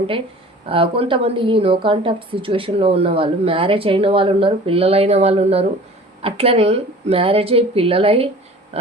కొంతమంది ఈ నో కాంటాక్ట్ సిచ్యువేషన్లో ఉన్న వాళ్ళు మ్యారేజ్ అయిన వాళ్ళు ఉన్నారు, పిల్లలైన వాళ్ళు ఉన్నారు. అట్లనే మ్యారేజ్ అయ్యి పిల్లలై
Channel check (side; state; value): both; normal; correlation 0.44